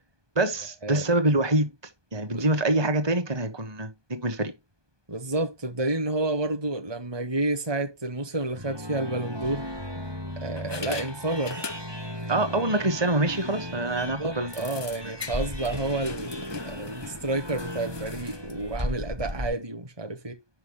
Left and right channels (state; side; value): late; left; 1.2 ms